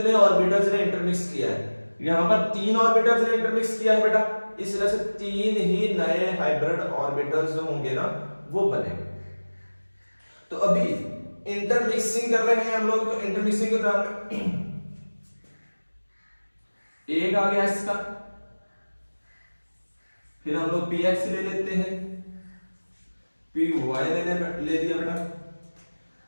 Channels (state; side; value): inverted; both; correlation -1.00